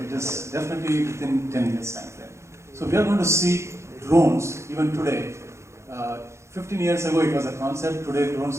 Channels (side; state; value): left; late; 0.13 ms